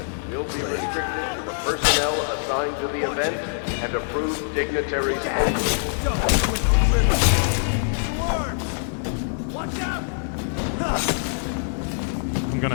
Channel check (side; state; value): right; silent; 57 dB below the other